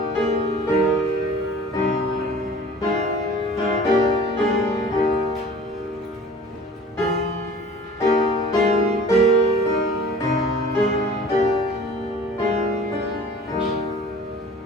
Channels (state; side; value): normal; both; correlation 0.46